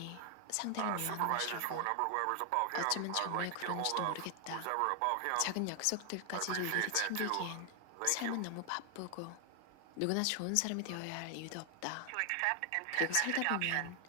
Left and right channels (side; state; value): both; different; correlation 0.00